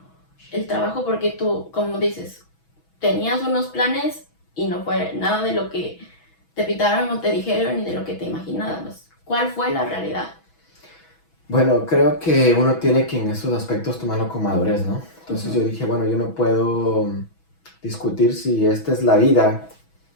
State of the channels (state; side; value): late; right; 6.1 ms